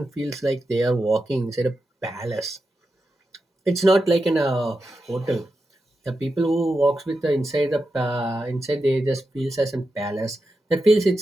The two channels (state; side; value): normal; both; correlation 0.89